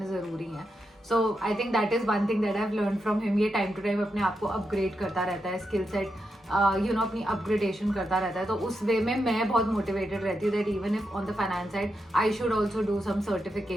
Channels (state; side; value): normal; both; correlation 0.85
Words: जरूरी हैं. So I think that is one thing that I have learn from him. ये टाइम टू टाइम अपने आप को अपग्रेड करता रहता है, स्किल सेट अपनी अपग्रेडेशन करता रहता है. तो उस वे में मैं बहुत मोटिवेटेड रहती हूँ that even if on the finance side I should also do some